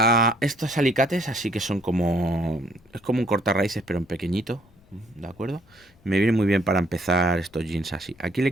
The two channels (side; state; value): left; noise; rumble, 29 dB below the sound